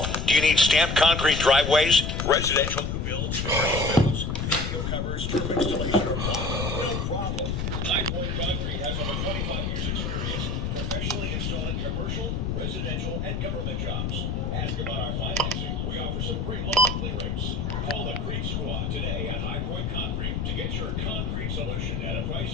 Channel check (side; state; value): left; noise; rumble, 1 dB below the sound